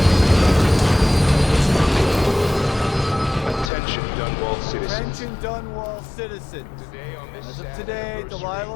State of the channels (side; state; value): right; drops out; at 3.7 s